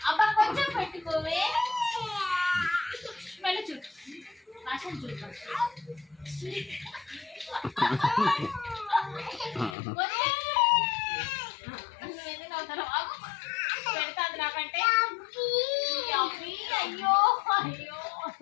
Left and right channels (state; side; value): drops out; right; at 9.8 s